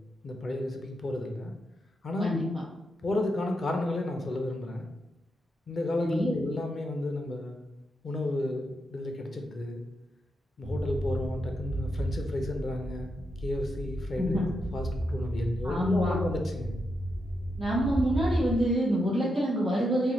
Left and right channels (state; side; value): normal; both; correlation 0.84